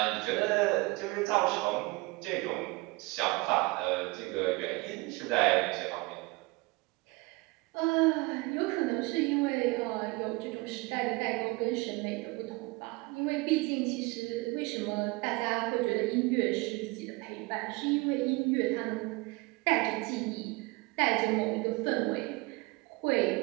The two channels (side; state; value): left; quieter; 25.0 dB